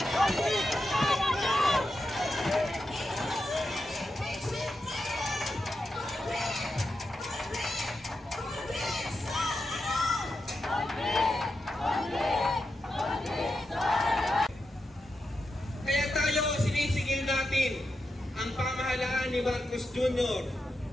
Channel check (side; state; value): both; normal; correlation 0.88